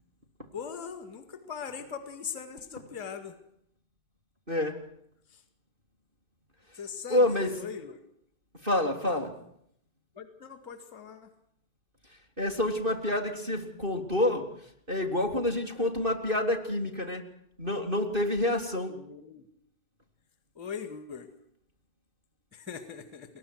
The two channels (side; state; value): left; late; 2.6 ms